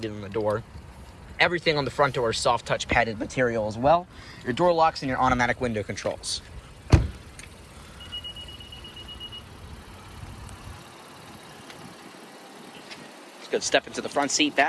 on the door. Everything on the front door is soft touch padded material as well. Your door locks and your automatic window controls. Let's go step into the front seat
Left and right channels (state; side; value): identical; both; correlation 1.00